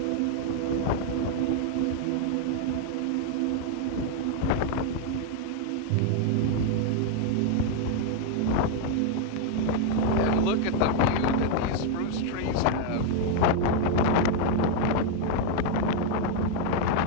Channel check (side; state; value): both; different; correlation 0.00